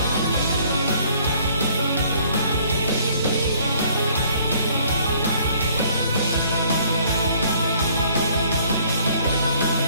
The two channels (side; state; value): both; inverted; correlation -0.60